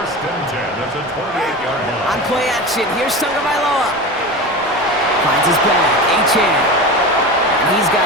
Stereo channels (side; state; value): both; normal; correlation 0.28